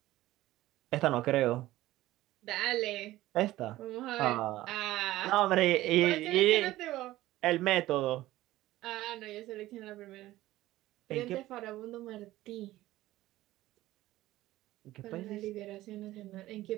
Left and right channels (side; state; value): left; quieter; 16.1 dB